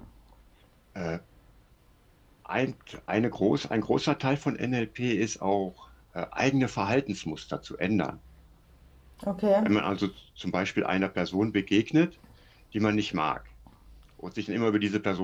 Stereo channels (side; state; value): both; identical; correlation 1.00